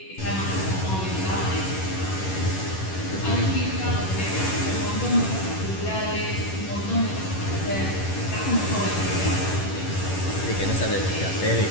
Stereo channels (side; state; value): right; late; 11 ms